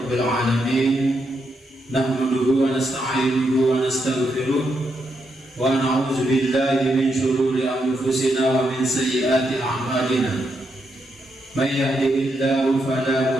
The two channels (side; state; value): both; normal; correlation 0.81